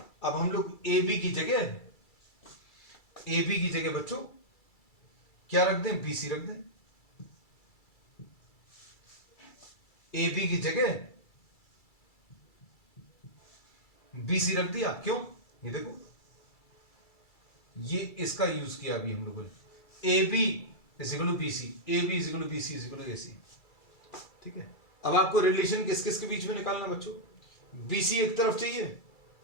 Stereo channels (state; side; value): late; right; 2.3 ms